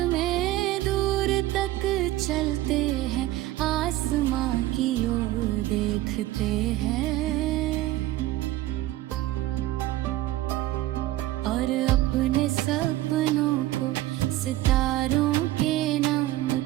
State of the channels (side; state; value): left; quieter; 16.0 dB